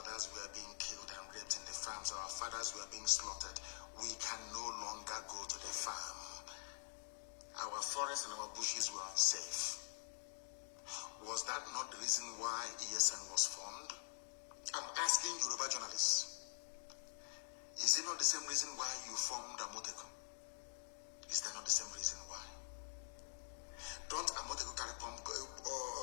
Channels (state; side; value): silent; right; digital silence